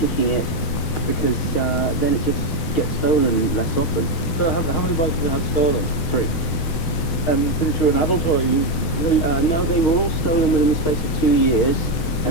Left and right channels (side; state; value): right; late; 6.2 ms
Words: it, because then it just gets stolen less often. So how many bikes have you had stolen? 3. And since you're an adult, or are you... No, they were all stolen within the space of 2 years,